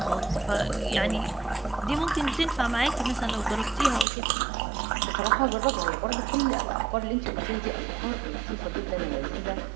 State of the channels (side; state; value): left; drops out; at 4.0 s